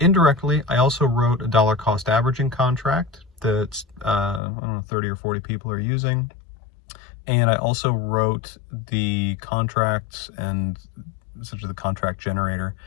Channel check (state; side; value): drops out; right; at 4.4 s